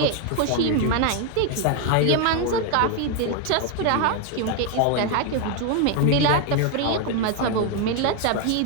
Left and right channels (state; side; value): different; both; correlation 0.01